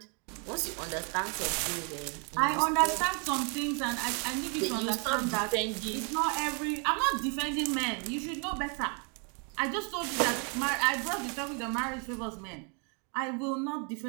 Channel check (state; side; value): quieter; left; 36.9 dB